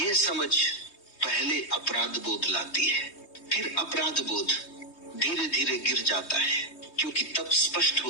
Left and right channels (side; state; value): right; late; 3.2 ms